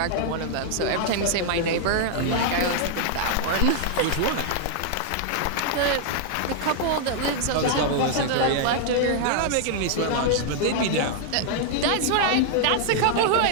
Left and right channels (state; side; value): different; both; correlation -0.01